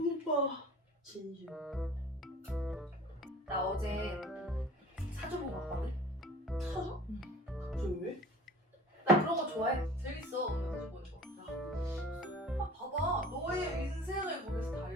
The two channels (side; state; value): both; normal; correlation 0.44